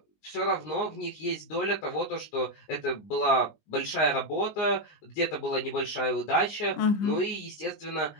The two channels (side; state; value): right; late; 19 ms